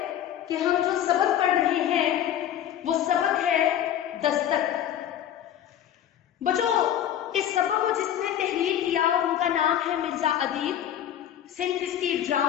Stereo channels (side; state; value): right; quieter; 10.7 dB